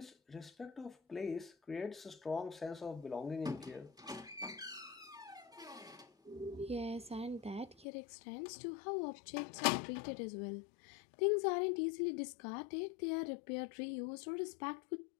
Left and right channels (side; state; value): right; drops out; at 7.9 s